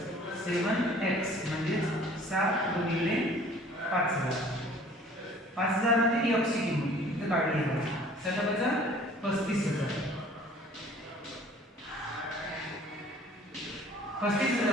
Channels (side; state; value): both; normal; correlation 0.52